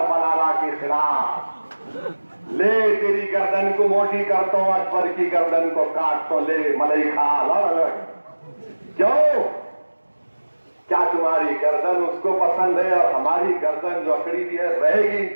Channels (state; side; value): inverted; both; correlation -1.00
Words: بلالا کے خلاف، لے تیری گردن کو موٹی کرتا ہوں، اکبر کی گردن کو کاٹ تو لے ملئی کھا لڑ۔ کیوں؟ کیا تمہاری گردن اس کو پسند ہے؟ اور ہماری گردن جو اکڑی بھی ہے رہے گی